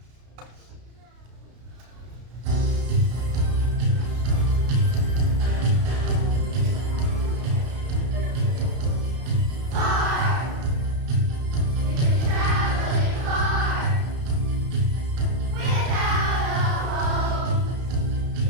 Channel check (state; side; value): late; left; 33 ms